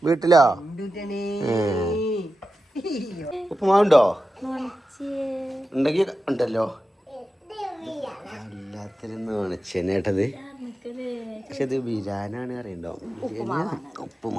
വീട്ടിലോ? ഉപ്പുമാവുണ്ടോ? ഉണ്ടെങ്കി ഉണ്ടല്ലോ. എല്ലാത്തിനും നനച്ചേട്ടത്. പക്ഷെ ഇത് ബിരിയാണിയാണ് അറിയണ്ടോ?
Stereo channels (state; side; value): normal; both; correlation 0.92